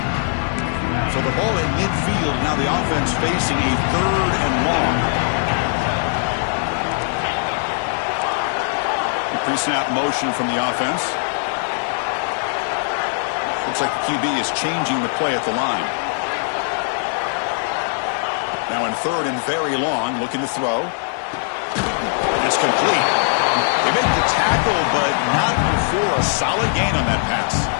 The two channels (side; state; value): right; silent; 65 dB below the other